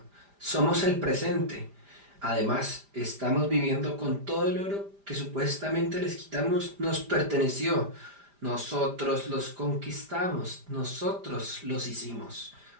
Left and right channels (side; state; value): left; late; 5.0 ms